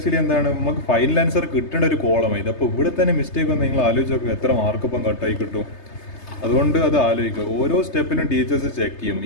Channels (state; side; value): late; right; 3.3 ms